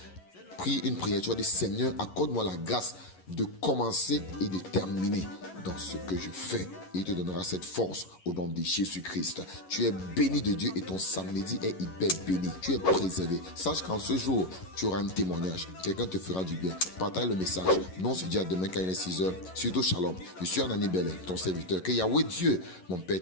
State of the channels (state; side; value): late; right; 11 ms